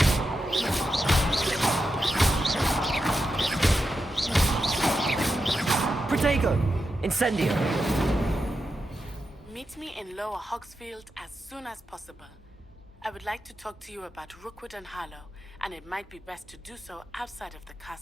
Protego! Incendio! Meet me in Lower Hogsfield as soon as possible. I would like to talk to you about Rookwood and Harlow, and it might be best to do so outside of the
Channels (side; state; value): both; normal; correlation 0.88